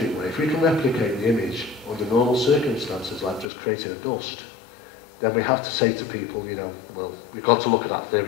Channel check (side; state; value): right; drops out; at 3.5 s